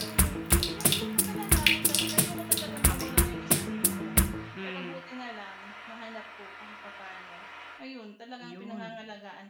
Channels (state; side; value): identical; both; correlation 1.00